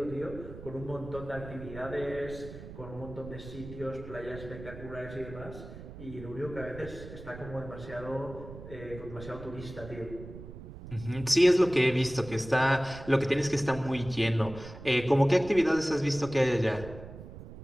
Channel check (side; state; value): right; noise; rumble, 13 dB below the sound